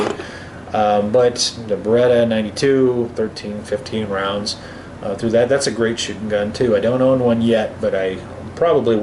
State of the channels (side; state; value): both; identical; correlation 1.00